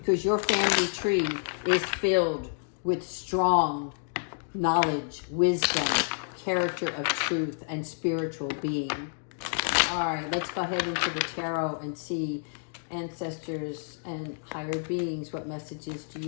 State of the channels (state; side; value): silent; right; digital silence